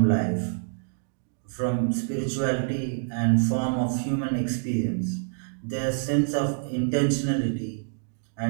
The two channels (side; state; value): left; silent; digital silence